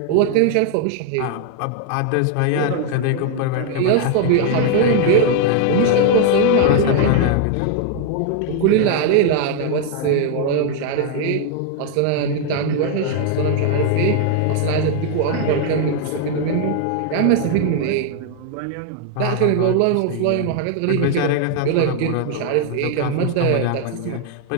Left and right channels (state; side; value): different; both; correlation 0.00